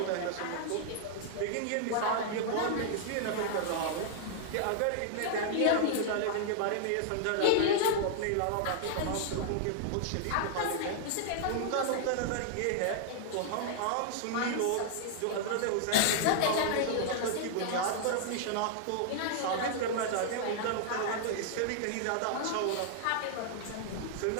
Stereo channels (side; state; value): both; different; correlation -0.01